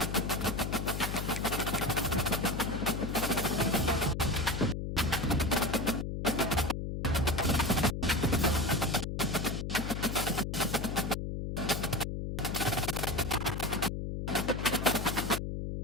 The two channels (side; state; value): left; noise; hum, 3 dB below the sound